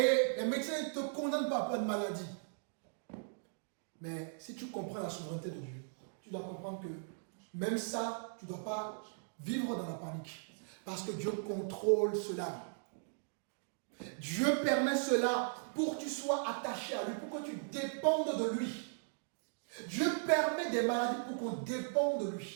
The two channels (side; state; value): left; silent; digital silence